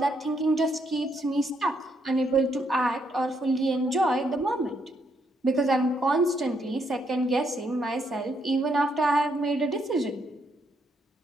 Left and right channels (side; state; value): both; normal; correlation 0.75